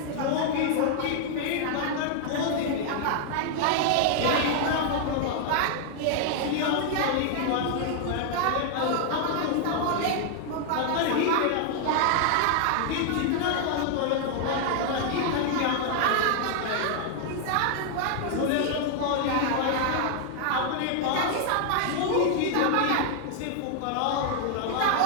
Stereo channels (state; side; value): different; both; correlation 0.00